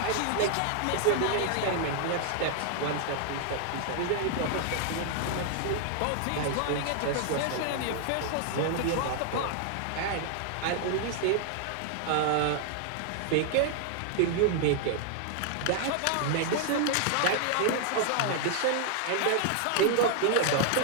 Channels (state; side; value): different; both; correlation 0.00